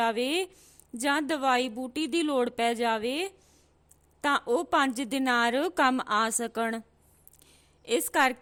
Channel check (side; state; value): both; identical; correlation 1.00